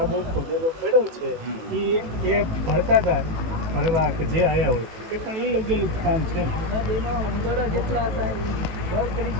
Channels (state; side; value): late; left; 18 ms